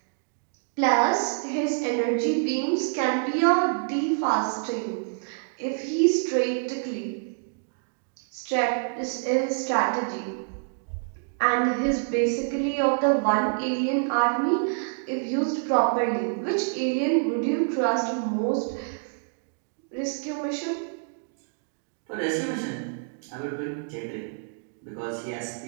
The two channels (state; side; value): silent; left; digital silence